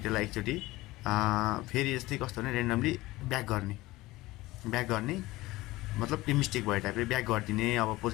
त्यसलाई एकचोटि फेरि यस्तै कस्तो भने रेन्डमली ब्याक गर्ने मतलब त्यो मिस्टेक भयो टाइपले ब्याक गरिदिने। अब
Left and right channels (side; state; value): right; quieter; 19.1 dB